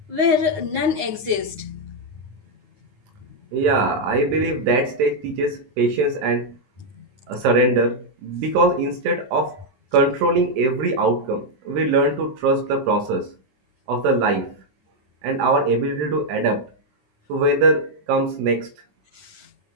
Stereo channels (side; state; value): left; late; 9.6 ms